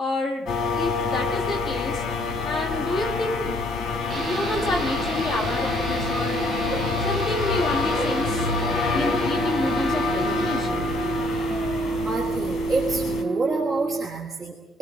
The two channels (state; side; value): normal; both; correlation 0.64